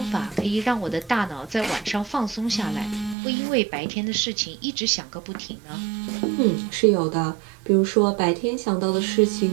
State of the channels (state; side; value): drops out; left; at 3.2 s